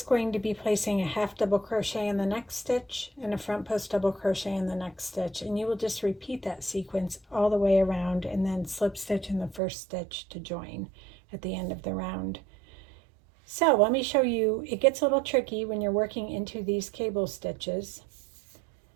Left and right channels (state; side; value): drops out; left; at 9.6 s